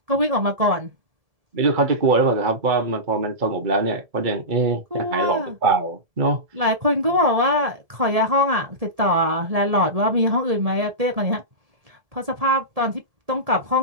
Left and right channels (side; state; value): left; late; 1.7 ms